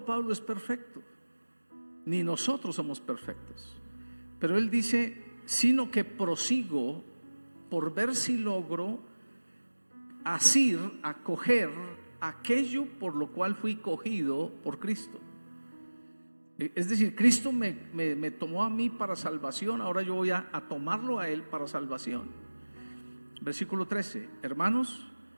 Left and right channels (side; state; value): both; inverted; correlation -1.00